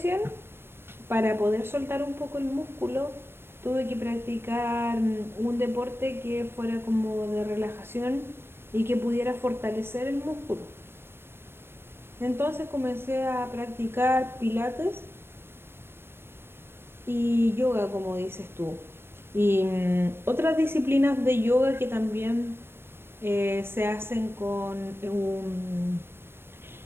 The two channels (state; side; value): late; left; 0.11 ms